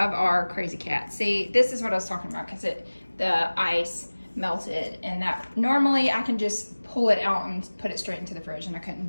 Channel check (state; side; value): inverted; both; correlation -1.00